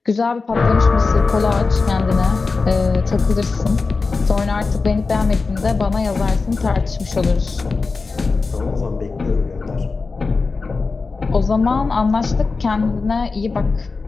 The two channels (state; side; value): quieter; right; 4.2 dB